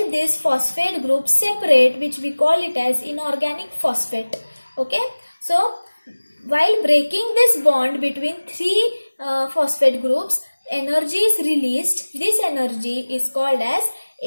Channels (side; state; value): both; inverted; correlation -1.00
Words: this phosphate group separate, which we call it as inorganic phosphate. Okay, so while breaking this bond between 3 phosphate groups, energy is released. This energy is called as